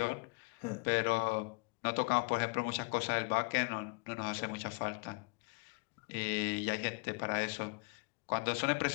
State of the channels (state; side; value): quieter; right; 31.2 dB